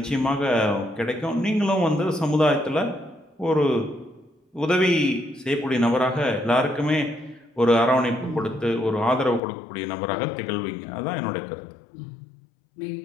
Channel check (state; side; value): drops out; right; at 9.4 s